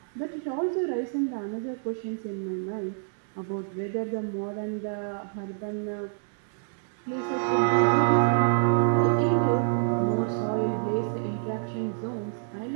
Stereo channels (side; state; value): left; silent; digital silence